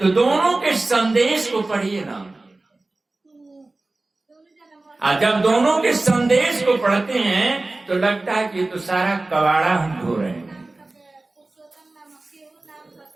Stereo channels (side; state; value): left; quieter; 3.0 dB